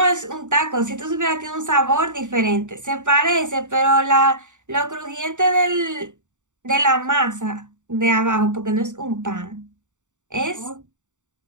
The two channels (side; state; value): left; late; 0.85 ms